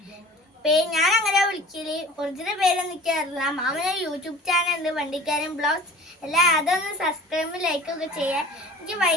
ഞാൻ അങ്ങനെ വിളിക്കല്. ഒറിജിനൽ പേരൊന്നും എനിക്കറിയില്ല. മാമന് യൂട്യൂബ് ചാനൽ ഉണ്ട്, വണ്ടിക്കാരൻ ബ്ലോഗ്സ്. എല്ലാം അതൊന്ന് സബ്സ്ക്രൈബ് ലൈക്ക് ഒക്കെ ചെയ്യാൻ. എനിക്ക്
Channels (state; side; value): normal; both; correlation 0.42